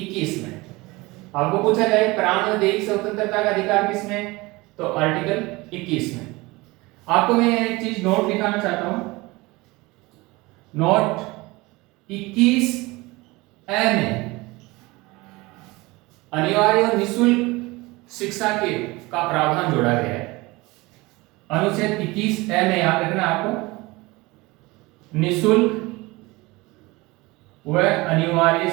में। आपको पूछा जाए प्राण और दैहिक स्वतंत्रता का अधिकार किसमें, तो आर्टिकल 21 में। आपको मैं एक चीज नोट दिखाना चाहता हूं, नोट 21 ए में अनिवार्य और निःशुल्क शिक्षा के का प्रावधान जोड़ा गया है। अनुच्छेद 21 ए में याद रखना आपको, निःशुल्क व अनिवार्य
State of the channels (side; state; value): left; quieter; 22.4 dB